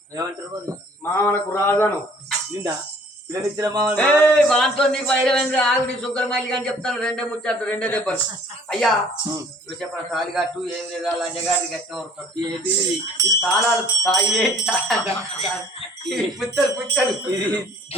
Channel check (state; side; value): normal; both; correlation 0.54